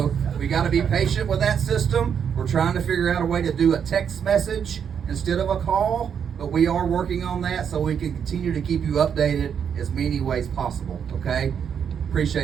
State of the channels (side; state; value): left; quieter; 7.7 dB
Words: we got to be patient with that system. We're trying to figure out a way to do a text message instead of a call, but we are working on that so we can continue to keep you updated as many ways possible, okay?